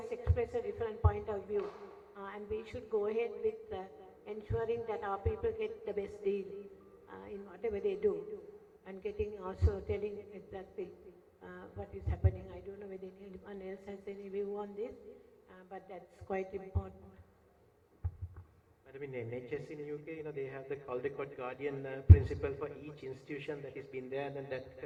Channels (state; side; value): identical; both; correlation 1.00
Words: express a different point of view, and we should go ahead with ensuring that our people get the best deal in whatever they do, and getting also telling exactly what is happening. I don't know whether anyone else has any view on this, but that's quite important. Madam, in NHS in UK, they have the Caldecott Guardian principle for each institution that has been there, and then that